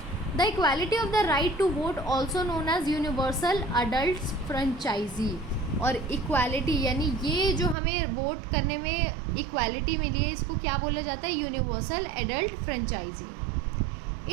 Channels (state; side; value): drops out; left; at 7.8 s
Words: The equality of the right to vote also known as universal adult franchise. और इक्वालिटी यानी ये जो हमें वोट करने में इक्वालिटी मिली है, इसको क्या बोला जाता है universal adult franchise.